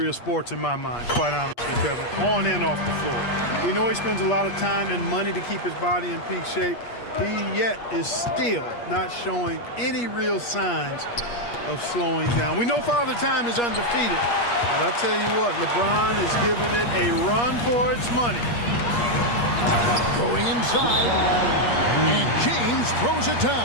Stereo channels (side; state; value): right; late; 8.4 ms